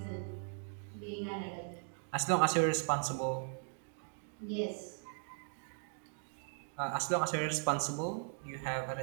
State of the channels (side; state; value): left; silent; 52 dB below the other